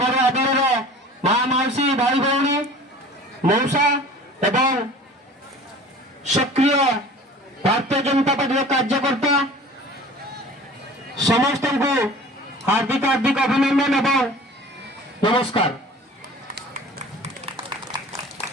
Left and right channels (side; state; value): both; normal; correlation 0.43